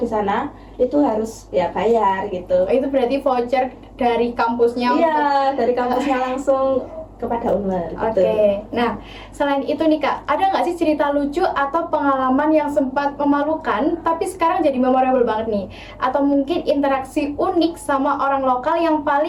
sana itu harus ya bayar gitu. Itu berarti voucher dari kampusnya? Iya, dari kampusnya langsung kepada Unmer. Oke. Nah, selain itu nih Kak, ada nggak sih cerita lucu atau pengalaman yang sempat memalukan tapi sekarang jadi memorable banget nih? Atau mungkin interaksi unik sama orang lokal yang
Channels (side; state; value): both; identical; correlation 1.00